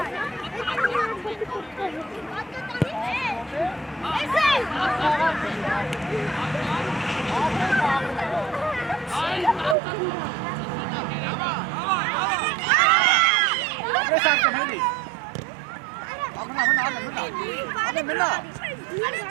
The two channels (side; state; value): left; drops out; at 9.8 s